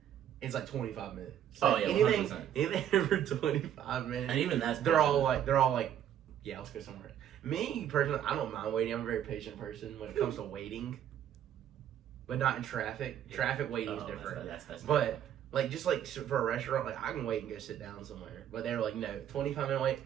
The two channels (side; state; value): left; quieter; 10.3 dB